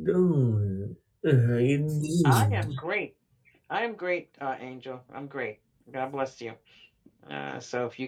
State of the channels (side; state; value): both; identical; correlation 1.00